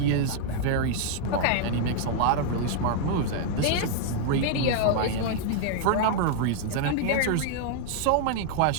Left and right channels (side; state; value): both; different; correlation -0.01